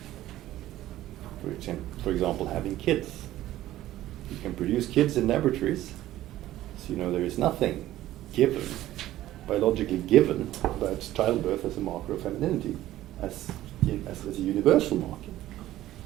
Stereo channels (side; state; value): left; quieter; 14.5 dB